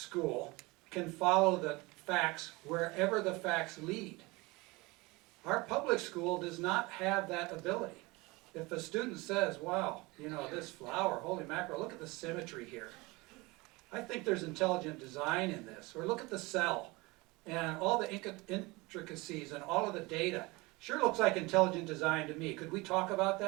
can follow the facts wherever the facts lead. Our public school does not have that ability. If a student says, wow, you know, this flower, holy mackerel, look at the symmetry here. I think there's intelligent design in this. Or look at the cell and all the intricacies and all of the data. Sure looks like intelligent design to me. Could we talk about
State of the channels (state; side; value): quieter; left; 23.7 dB